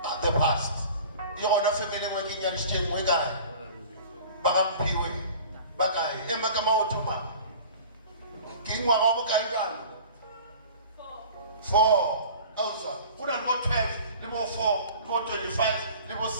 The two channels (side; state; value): both; inverted; correlation -0.43